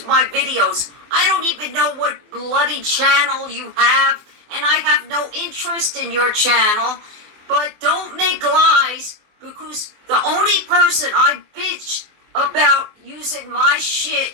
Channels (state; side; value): late; left; 24 ms